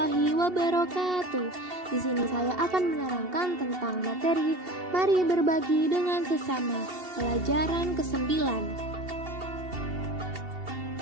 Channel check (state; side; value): late; left; 2.7 ms